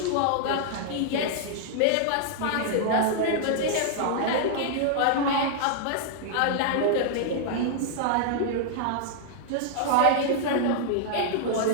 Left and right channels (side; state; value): both; different; correlation -0.01